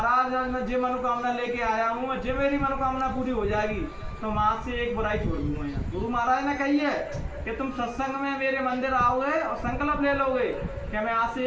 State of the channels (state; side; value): identical; both; correlation 1.00